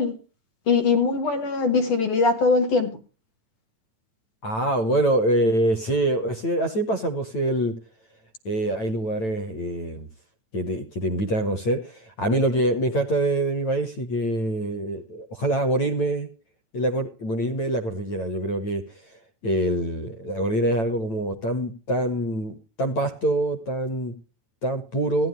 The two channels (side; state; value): right; late; 9.0 ms